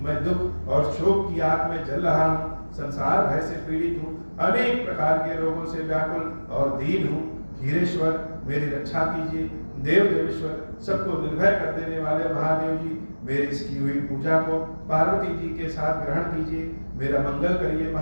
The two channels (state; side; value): inverted; both; correlation -1.00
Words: मैं दुख और शोक की आग में जल रहा हूँ, संसार भय से पीड़ित हूँ, अनेक प्रकार के रोगों से व्याकुल और दीन हूँ। खीरेश्वर मेरी रक्षा कीजिए। देव देवेश्वर, सबको निर्भय कर देने वाले महादेव जी, मेरी इसकी हुई पूजा को पार्वती जी के साथ ग्रहण कीजिए। मेरा मंगल करिए।